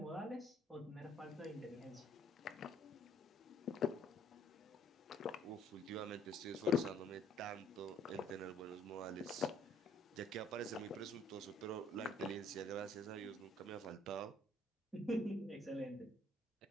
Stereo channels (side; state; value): both; normal; correlation 0.61